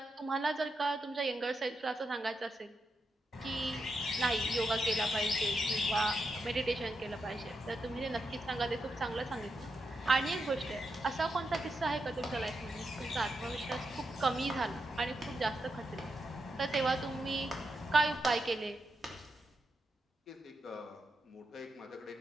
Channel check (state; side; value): normal; both; correlation 0.85